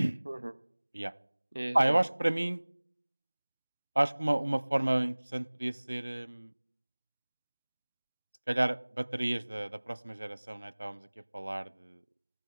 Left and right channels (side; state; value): both; inverted; correlation -1.00